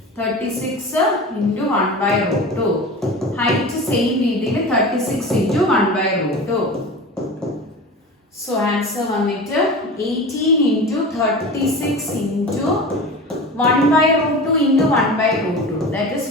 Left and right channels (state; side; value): normal; both; correlation 0.32